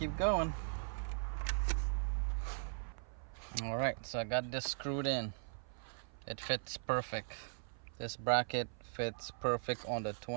going. All right, so I got this screwed in. It fits perfect. This bracket fits perfect on the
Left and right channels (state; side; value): silent; left; 51 dB below the other